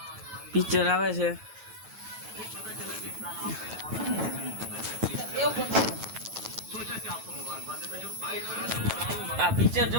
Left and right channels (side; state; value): left; late; 9.2 ms